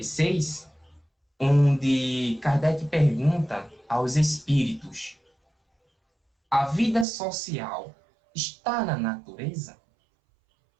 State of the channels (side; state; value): left; drops out; at 7.1 s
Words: onde Kardec pergunta aos espíritos: a vida social está na natureza?